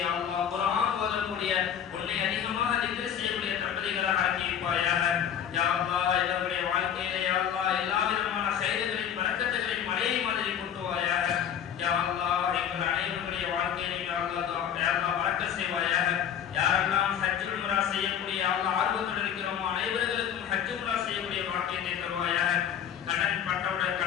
யா அல்லாஹ் குர்ஆன் ஓதக்கூடிய உன்னை அதிகமாக திக்ர் செய்யக்கூடிய தம்பதிகளாக ஆக்கி வைப்பாயாக. யா அல்லாஹ் இவருடைய வாழ்க்கையிலே யா அல்லாஹ் எல்லா விதமான கைதுகளின் பரக்கத்துகளின் மழையை மாதிரி கொட்டுவாயாக. யா அல்லாஹ் எங்கள் அனைவருடைய வாழ்க்கையிலே யா அல்லாஹ் பரக்கத் செய்வாயாக. யாரெல்லாம் ஹஜ் உம்ரா செய்யக்கூடிய யா அல்லாஹ் ஆர்வத்தோடு இருக்கிறோமோ அனைவருக்கும் ஹஜ் உம்ரா செய்யக்கூடிய பாக்கியத்தை தருவாயாக. கடன் பட்டவுடன்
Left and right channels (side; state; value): right; quieter; 9.0 dB